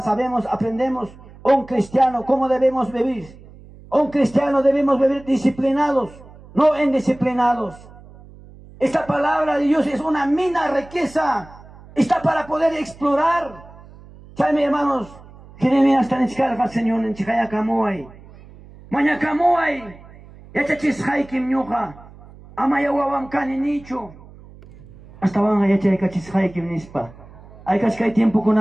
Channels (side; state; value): right; noise; hum, 21 dB below the sound